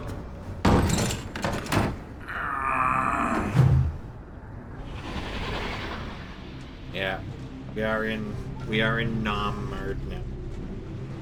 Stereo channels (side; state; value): both; identical; correlation 1.00